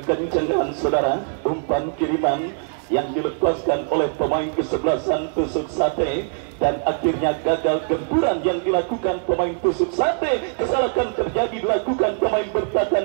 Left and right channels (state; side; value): silent; left; digital silence